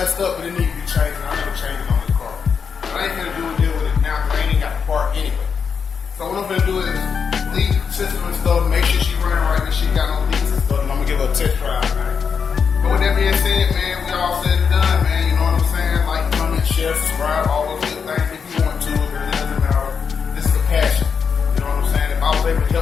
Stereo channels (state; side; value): quieter; right; 6.2 dB